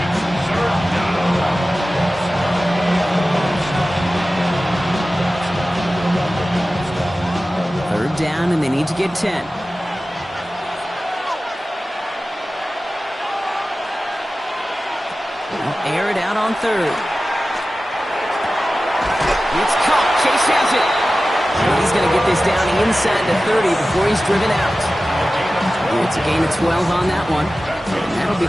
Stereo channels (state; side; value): normal; both; correlation 0.95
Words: Third down, and they need to get 10. They'll air it out on third. It's caught. Chase has it. And he's going to get this down inside the 30 before he's driven out. It's a gain of 12 on that one. And that'll be